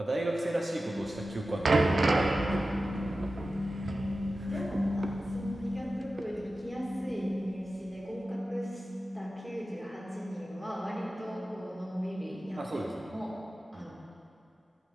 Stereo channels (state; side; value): normal; both; correlation 0.94